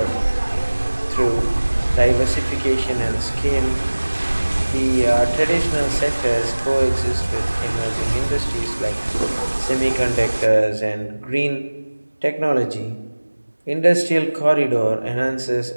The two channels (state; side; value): inverted; both; correlation -1.00